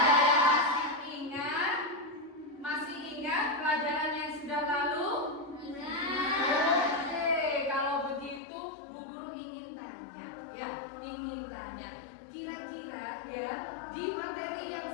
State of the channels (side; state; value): right; drops out; at 8.4 s